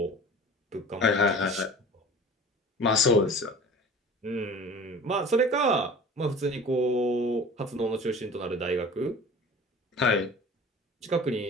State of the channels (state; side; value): normal; both; correlation 0.42